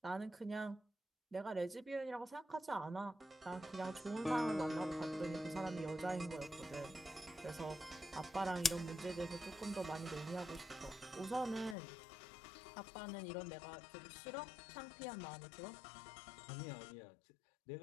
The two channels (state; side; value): drops out; right; at 11.8 s